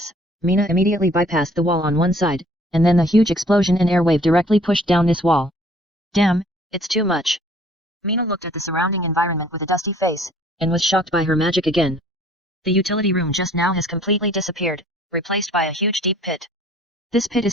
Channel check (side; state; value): both; normal; correlation 0.56